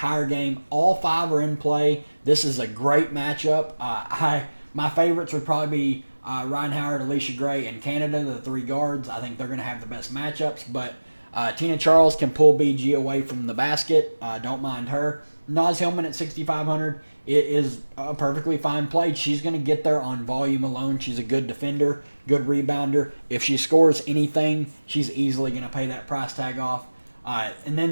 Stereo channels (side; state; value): both; inverted; correlation -1.00